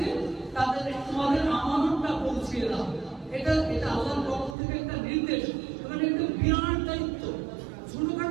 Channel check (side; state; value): left; drops out; at 4.5 s